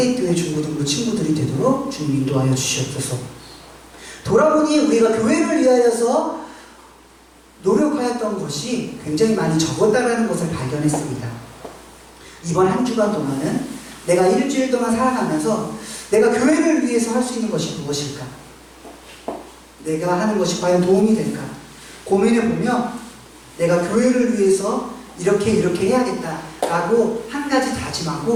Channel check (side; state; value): both; identical; correlation 1.00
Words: 중고등부 친구들이 되도록 주님 인도하여 주시옵소서. 돌아보니 우리가 교회를 위하여서 노력하였던 것이 굉장히 많이 적었다는 것을 발견했습니다. 이번 한 주간 동안은 내가 일주일 동안 살아가면서 내가 교회를 위해서 할 수 있는 것이 무엇일까? 내가 하는 것이 과연 도움이 될까? 고민해보며 내가 교회를 위해서 이렇게 해야겠다라고 한 가지